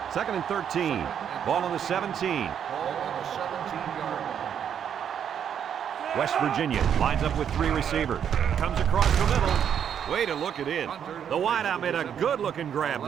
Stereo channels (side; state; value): left; quieter; 8.6 dB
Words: Second and 13. Ball on the 17. Ball on the 17-yard line. West Virginia lines up with 3 receivers. Comes across the middle. Way to look it in. The wideout made a good-looking grab